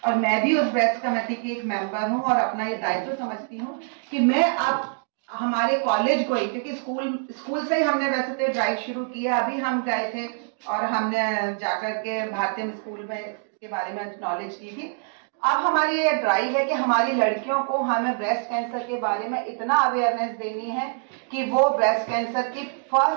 और मैं भी उस ब्रेस्ट कमेटी की एक मेंबर हूँ और अपना ये दायित्व समझती हूँ कि मैं अब हमारे कॉलेज को ही, क्योंकि स्कूल से ही हमने वैसे तो ड्राइव शुरू किया। अभी हम गए थे और हमने जाकर के भारतीय स्कूल में इसके बारे में नॉलेज की थी। अब हमारी ये ड्राइव है कि हमारी लड़कियों को हमें ब्रेस्ट कैंसर के बारे में इतना अवेयरनेस देनी है कि वो ब्रेस्ट कैंसर की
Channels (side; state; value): left; silent; 62 dB below the other